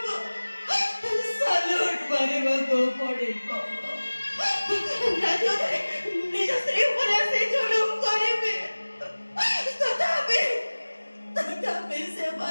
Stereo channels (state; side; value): inverted; both; correlation -1.00